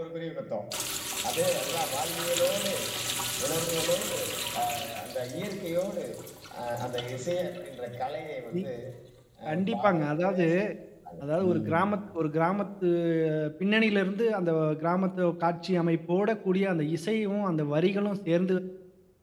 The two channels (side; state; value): both; identical; correlation 1.00